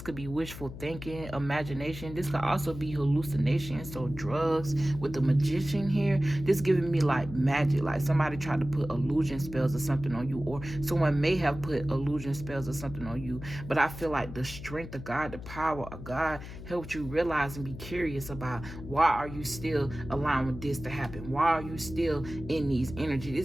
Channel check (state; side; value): noise; left; hum, 12 dB below the sound